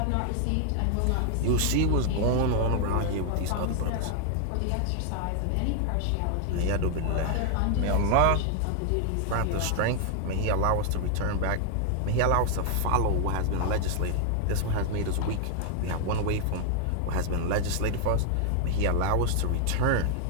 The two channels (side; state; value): both; different; correlation 0.00